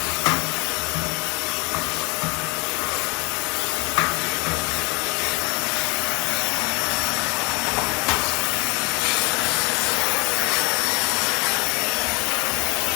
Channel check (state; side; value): quieter; right; 29.3 dB